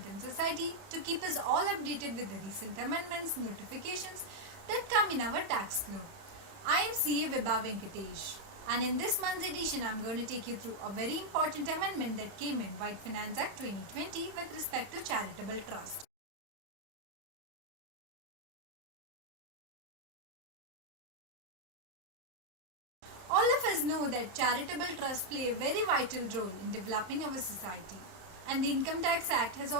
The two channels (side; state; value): left; late; 31 ms